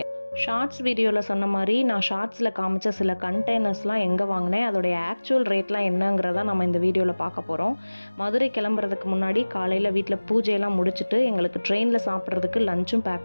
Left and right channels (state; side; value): inverted; both; correlation -1.00